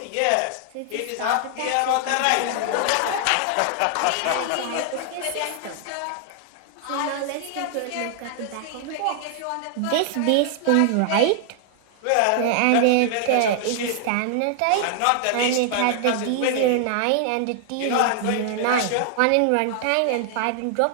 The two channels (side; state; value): both; different; correlation 0.00